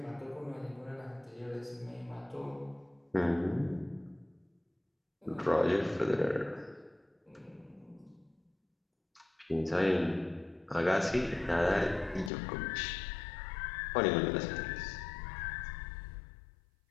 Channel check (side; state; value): right; drops out; at 12.3 s